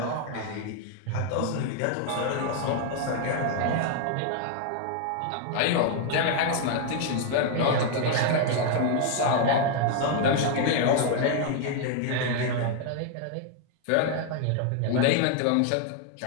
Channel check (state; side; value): different; both; correlation 0.00